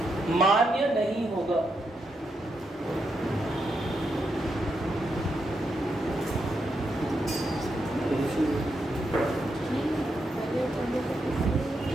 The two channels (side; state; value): both; normal; correlation 0.82